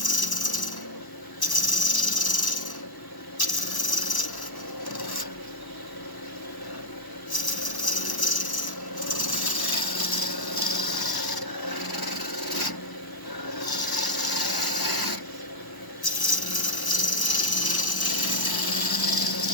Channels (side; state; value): right; late; 1.0 ms